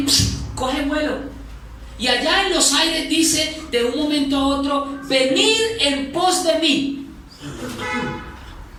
coge vuelo, y allá en los aires dice de un momento a otro: venid en pos de mí.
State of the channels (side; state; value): both; identical; correlation 1.00